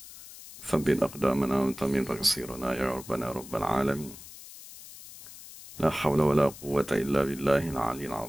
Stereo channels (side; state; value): left; noise; hiss, 16 dB below the sound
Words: ثبت أقدامنا وانتمن تقصيرنا يا ربنا رب العالمين. لا حول ولا قوة إلا بالله العلي